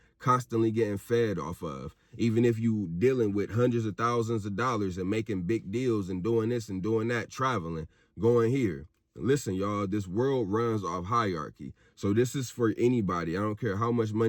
constantly getting fed off of. Even if you dealing with hundreds of thousands of dollars and making big deals and doing this and doing that, traveling, going here. Listen, y'all, this world runs off hierarchy. So this is for anybody. I don't care how much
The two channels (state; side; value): identical; both; correlation 1.00